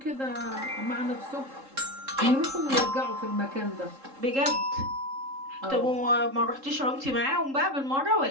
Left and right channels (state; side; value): late; left; 3.7 ms